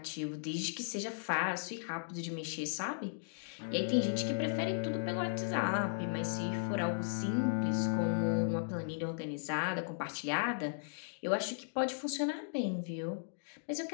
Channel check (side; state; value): right; silent; digital silence